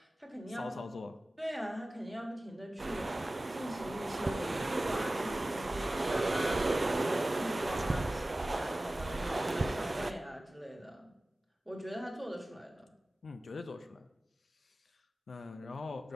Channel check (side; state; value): both; normal; correlation 0.97